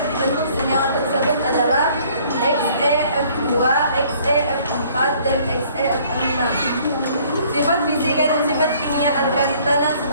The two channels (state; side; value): inverted; both; correlation -0.58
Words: dibentuk senyawa tersebut adalah XeF2, XeF4, dan XeF6. Sifat fisika dan sifat kimia alkali tanah